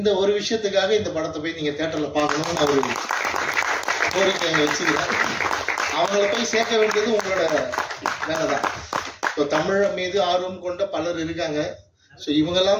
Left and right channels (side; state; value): both; identical; correlation 1.00